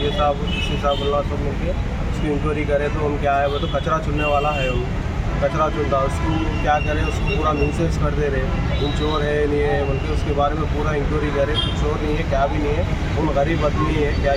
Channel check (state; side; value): identical; both; correlation 1.00